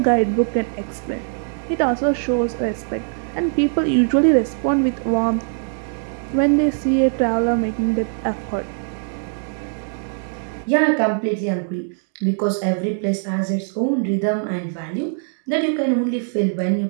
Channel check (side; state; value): left; silent; 62 dB below the other